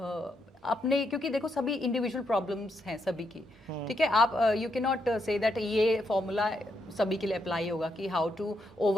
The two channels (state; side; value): normal; both; correlation 0.79